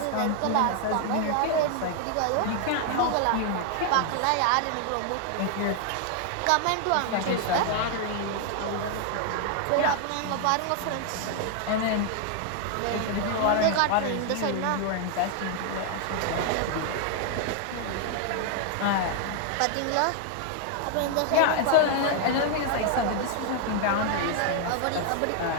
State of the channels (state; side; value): different; both; correlation 0.00